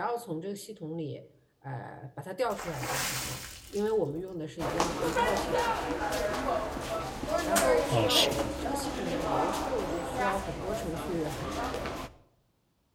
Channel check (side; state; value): both; identical; correlation 1.00